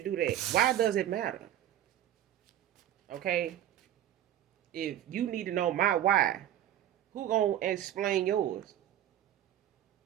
do that. Why does it matter? Okay, if you need to know my why, who gonna explain yours?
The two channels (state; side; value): quieter; left; 11.8 dB